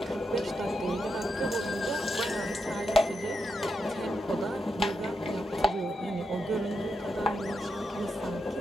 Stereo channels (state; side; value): normal; both; correlation 0.85